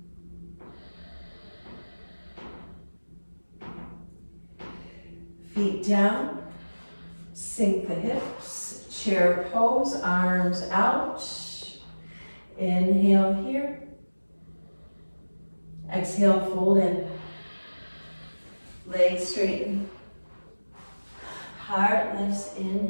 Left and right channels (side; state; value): both; inverted; correlation -1.00